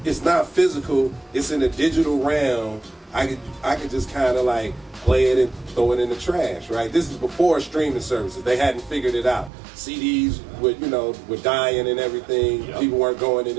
not physical. It's in a digital realm. I could just kind of like play it and throw it in the trash, right? This is before streaming services. They hadn't figured it out. CDs were dying and everything. Yep. People weren't going in.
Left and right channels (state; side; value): drops out; left; at 9.5 s